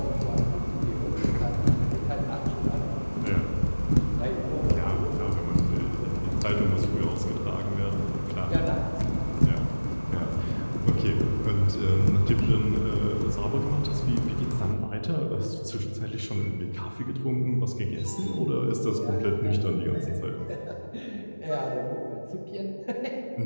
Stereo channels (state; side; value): inverted; both; correlation -1.00